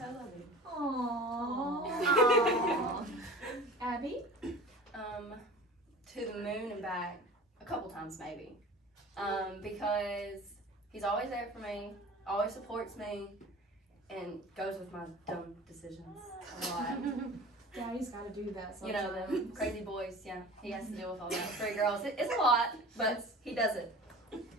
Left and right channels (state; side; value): normal; both; correlation 0.39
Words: loving. Aww. times maybe. Because he's always there for me, always supports me, and goes with my dumb decisions a lot. Daddy's got to do that You sometimes. know, the crazy boys, yeah. He has to deal with all that. 3 girls, it's a lot, but he does it.